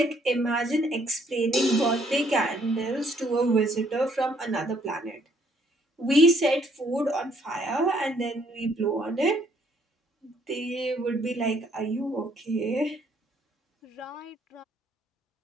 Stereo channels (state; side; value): normal; both; correlation 0.66